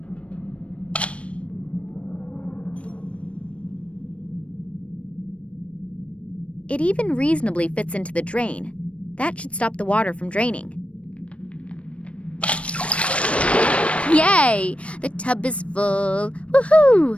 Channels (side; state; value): right; late; 0.062 ms